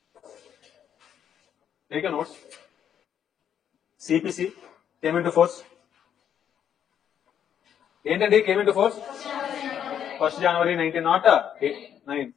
Take a notes. CPC came into force. ఏంటండి came into force? 1st January 1909.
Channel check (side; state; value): right; quieter; 9.1 dB